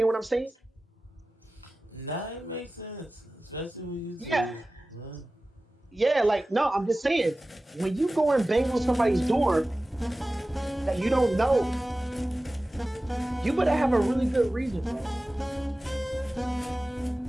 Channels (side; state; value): both; normal; correlation 0.96